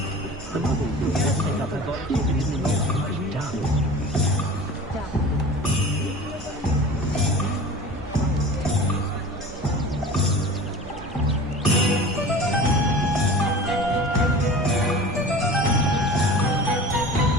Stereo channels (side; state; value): both; normal; correlation 0.38